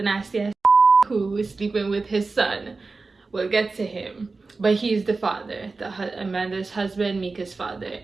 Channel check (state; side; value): quieter; left; 3.9 dB